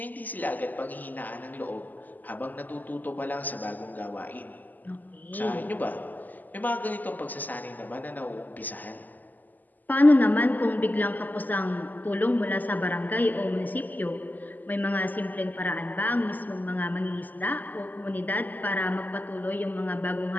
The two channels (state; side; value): late; right; 0.084 ms